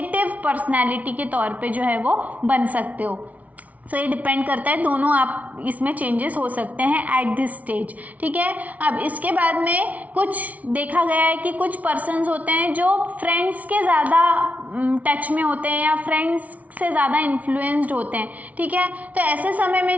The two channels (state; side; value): late; left; 0.070 ms